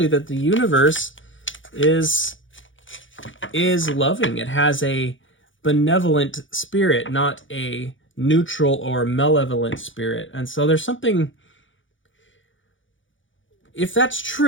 that the universe is loving. It has a benevolent spirit, not a neutral or malevolent spirit. And so there's something, if that's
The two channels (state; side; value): late; right; 0.56 ms